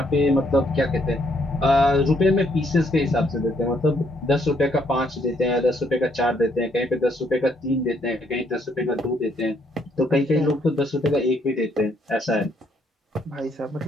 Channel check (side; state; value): both; normal; correlation 0.70